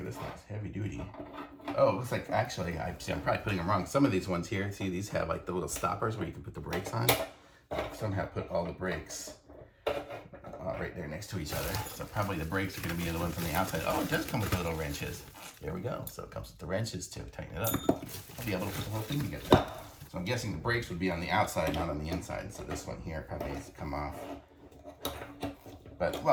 This thing's heavy duty. Oh, it looks like actually, I'm probably putting them wrong. Some of these ones here, see these have like the little stoppers where you can put the brakes on. Somehow put all the brakes right there next to each other. So probably the brakes are going to be the ones on the outside. Oh, it does come with the little wrenches. There we go. So it comes with the wrenches to tighten it up. I'll be able to put the whole thing together. So I'm guessing the brakes would be on the outside, not on the inside. So this one here probably needs to come off. But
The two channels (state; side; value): identical; both; correlation 1.00